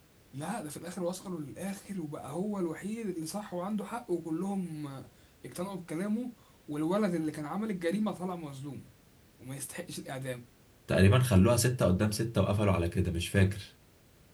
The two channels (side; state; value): both; identical; correlation 1.00